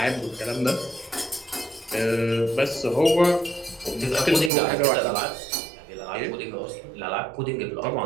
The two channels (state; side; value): drops out; left; at 4.5 s